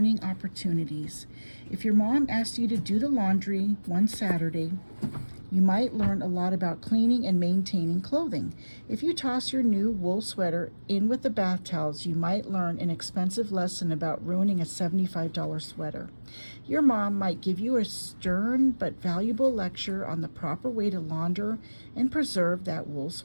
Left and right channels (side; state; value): both; inverted; correlation -1.00